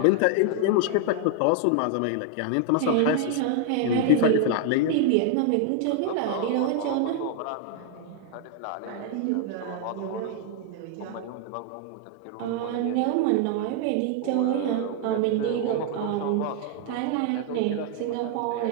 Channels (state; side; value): different; both; correlation 0.00